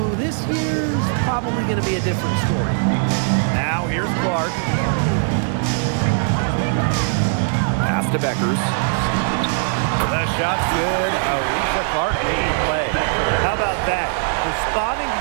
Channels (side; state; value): left; silent; digital silence